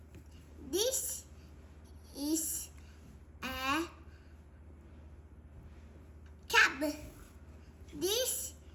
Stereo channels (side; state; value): both; identical; correlation 1.00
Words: This is a cab. This